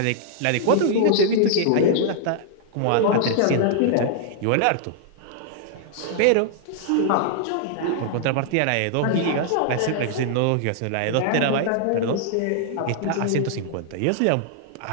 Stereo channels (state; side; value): different; both; correlation -0.01